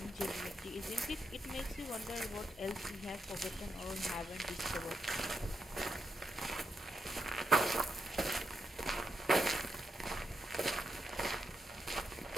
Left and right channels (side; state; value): both; normal; correlation 0.83